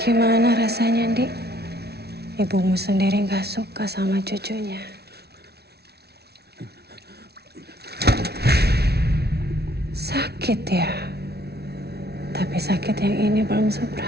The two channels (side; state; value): left; late; 0.47 ms